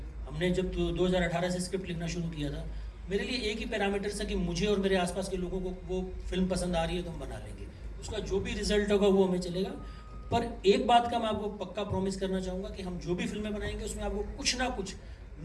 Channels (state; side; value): identical; both; correlation 1.00